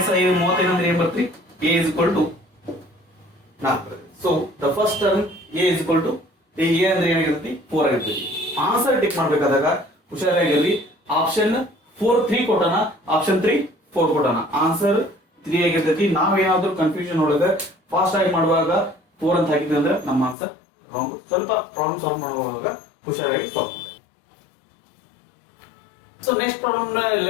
35 ಅಂದ್ರೆ ಏನ್ ಬರ್ತ್ರಿ, A is equal to 4. So the first term A is equal to A ಅಂದ್ರೆ ಏನಾಗಿರುತ್ತೆ 4 ಆಗಿರುತ್ತೆ. ಆನ್ಸರ್ ಟಿಕ್ ಮಾಡ್ಬೇಕಾದಾಗ ಹುಷಾರಾಗಿರ್ರಿ, ಆಪ್ಷನ್ 4 3 ಕೊಟ್ಟಣ, ಆಪ್ಷನ್ 3 4 ಕೊಟ್ಟಣ, ಆನ್ಸರ್ 3 ಆಗಿರ್ತೈತಿ. ನಾವೇನಾದ್ರೂ ಕನ್ಫ್ಯೂಷನ್ ಒಳಗೆ ಫಾಸ್ಟ್ ಆಗಿ ಮಾಡುವಾಗ 4 ಅಂತ ಹಾಕಿದ್ವಿ ಅಂದ್ರೆ ನಮ್ಮ ಆನ್ಸರ್ ರಾಂಗ್. ಸ್ವಲ್ಪ ಪ್ರಾಬ್ಲಮ್ ಸಾಲ್ವ್ ಮಾಡುವಾಗ ಹುಷಾರಾಗಿ ಸಾಲ್ವ್ ಮಾಡಿ. So next problem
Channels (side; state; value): right; drops out; at 20.4 s